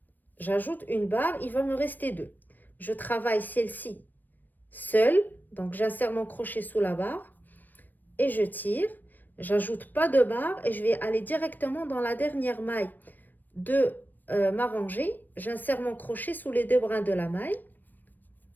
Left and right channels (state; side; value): late; right; 0.089 ms